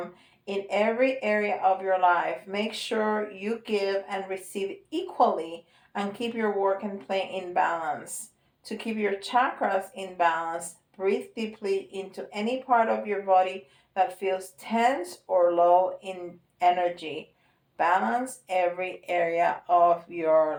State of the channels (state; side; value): identical; both; correlation 1.00